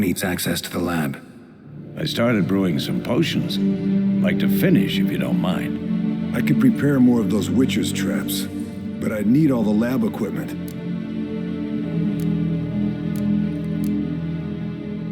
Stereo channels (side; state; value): both; identical; correlation 1.00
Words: access to the lab? I started brewing some potions. Like to finish, if you don't mind. I could prepare more of those Witcher's traps, but I'd need all the lab equipment.